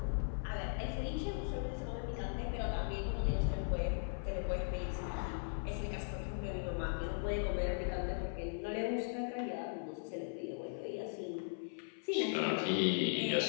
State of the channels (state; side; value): silent; right; 52 dB below the other